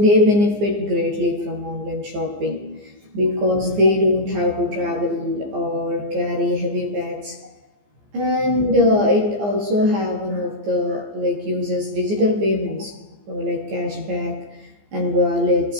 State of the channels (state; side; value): late; left; 15 ms